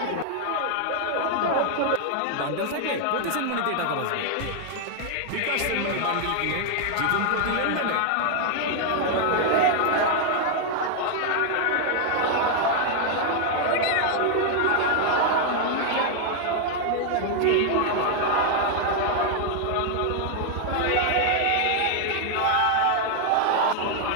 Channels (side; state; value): both; different; correlation 0.00